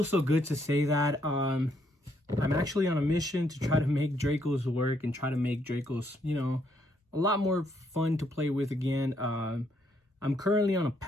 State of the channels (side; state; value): both; normal; correlation 0.73